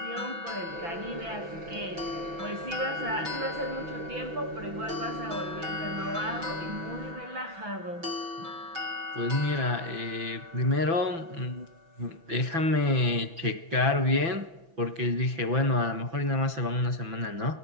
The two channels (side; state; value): left; late; 6.0 ms